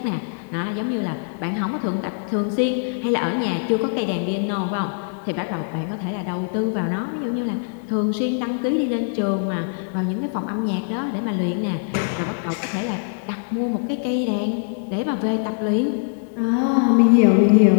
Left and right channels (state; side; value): silent; right; digital silence